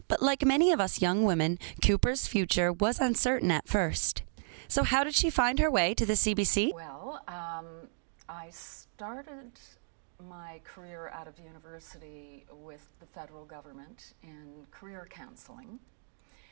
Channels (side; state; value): left; silent; digital silence